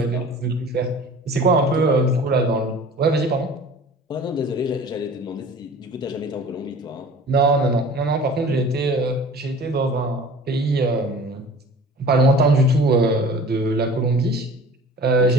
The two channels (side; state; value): both; normal; correlation 0.43